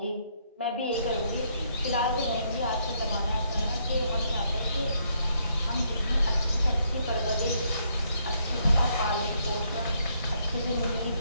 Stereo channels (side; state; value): both; inverted; correlation -0.72